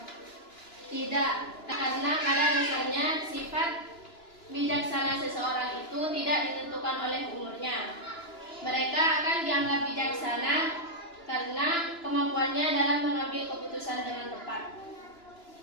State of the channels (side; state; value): right; late; 2.9 ms